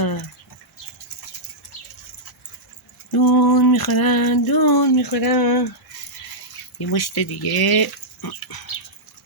دون میخورن. یه مشت دیگه.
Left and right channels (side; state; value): both; normal; correlation -0.10